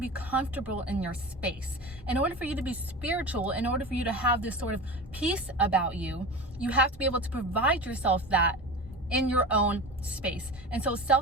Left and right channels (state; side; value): normal; both; correlation 0.30